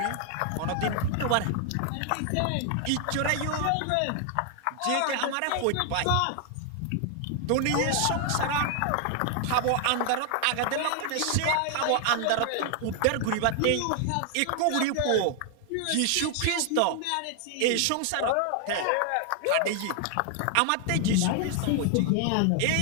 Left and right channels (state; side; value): different; both; correlation 0.00